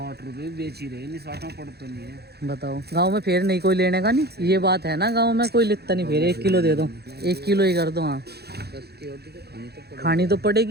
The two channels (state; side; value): late; left; 0.47 ms